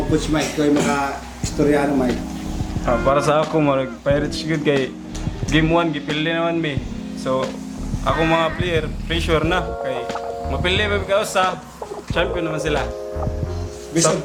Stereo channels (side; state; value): both; identical; correlation 1.00